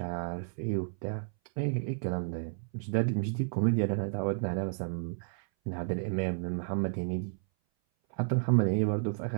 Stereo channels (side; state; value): left; silent; 57 dB below the other